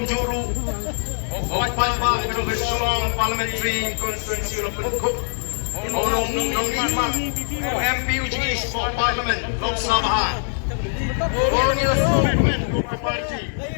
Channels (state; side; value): silent; right; digital silence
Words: Juru Opal Kedung Sulong Parliamentary Constituency Lopen Cook Nong Lima MP Uji East for Parliament Lok Sabha Borneo Movement Joko Parti